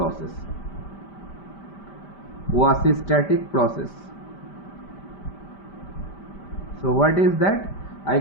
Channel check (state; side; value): late; right; 5.1 ms